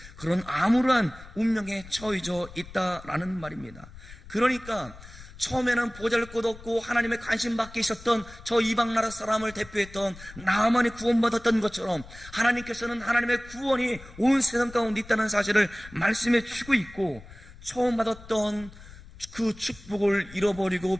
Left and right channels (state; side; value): noise; left; rumble, 18 dB below the sound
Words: 그런 암울한 운명에 처해져 있다라는 말입니다. 그러니까 처음에는 보잘것없고 하나님의 관심 밖에 있었던 저 이방 나라 사람을 대표했던 나아만이 구원받았던 것처럼 하나님께서는 하나님의 구원이 온 세상 가운데 있다는 사실을 말씀해 주고 있고, 처음 받았던 그 축복을